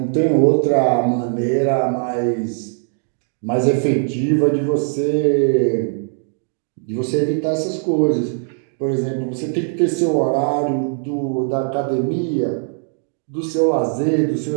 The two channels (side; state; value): left; silent; digital silence